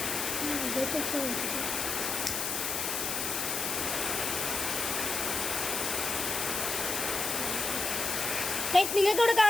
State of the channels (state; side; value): noise; left; hiss, 1 dB below the sound